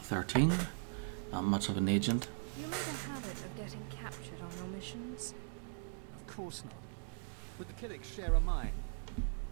13. Not much of an agent. You made a habit of getting captured on your missions? Of course not. But the Killiks share a mine.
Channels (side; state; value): left; silent; digital silence